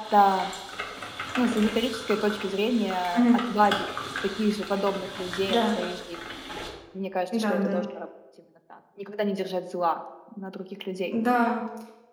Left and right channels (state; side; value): identical; both; correlation 1.00